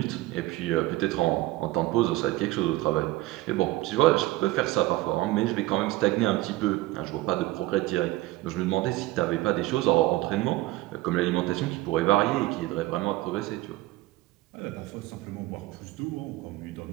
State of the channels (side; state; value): left; quieter; 18.0 dB